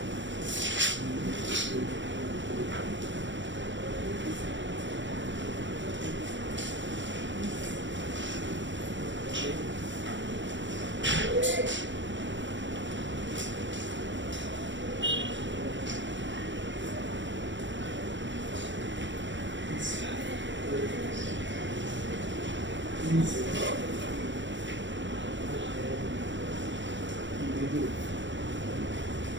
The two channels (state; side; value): late; left; 0.54 ms